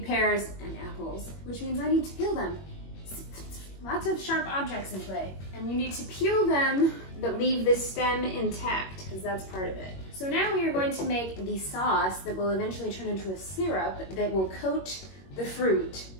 pears and apples, which means I need to peel them. Lots of sharp objects in play. And you need to peel them, but leave the stem intact, because that's part of it. So now we are going to make the sauce that will eventually turn into a syrup that will coat the fruit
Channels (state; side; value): late; right; 21 ms